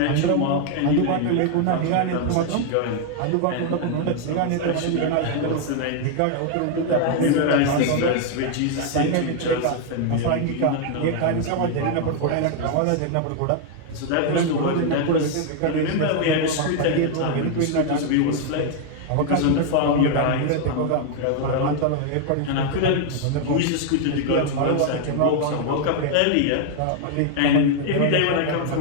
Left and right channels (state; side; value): different; both; correlation 0.00